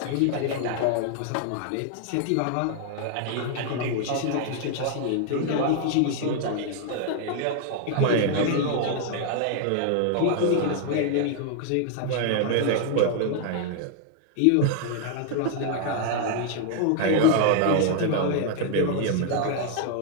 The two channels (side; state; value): both; different; correlation 0.00